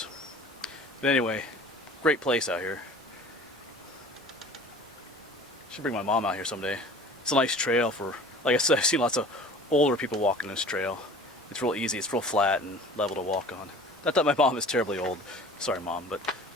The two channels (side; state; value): both; normal; correlation 0.44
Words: But anyway, great place out here. Should bring my mom out here someday. It's a nice trail for, like I said, I've seen lots of older people walking this trail. It's real easy, it's real flat and level to walk on. Not that my mom is terribly old. Sorry, Mom, but